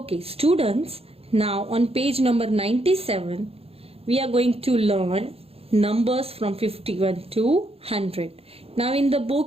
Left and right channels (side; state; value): left; late; 0.28 ms